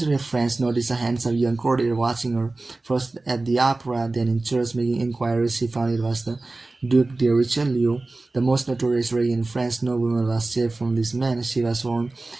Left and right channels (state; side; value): quieter; left; 3.2 dB